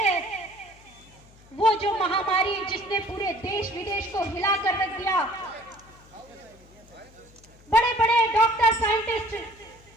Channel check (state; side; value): noise; left; hum, 26 dB below the sound